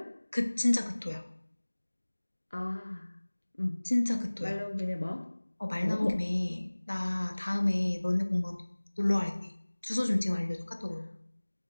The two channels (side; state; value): both; inverted; correlation -1.00